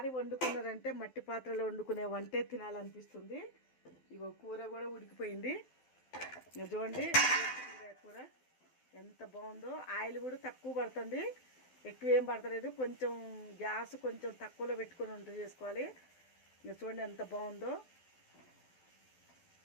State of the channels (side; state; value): right; late; 12 ms